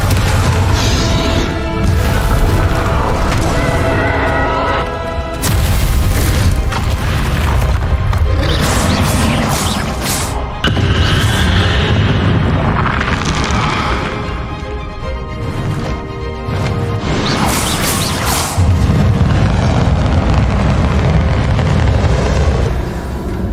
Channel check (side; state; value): both; identical; correlation 1.00